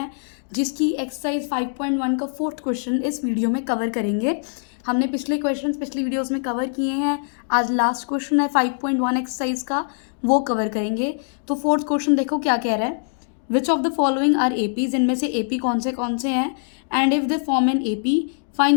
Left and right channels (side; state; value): right; silent; digital silence